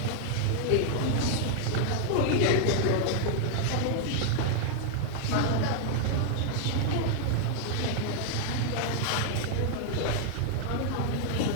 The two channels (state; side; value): different; both; correlation 0.00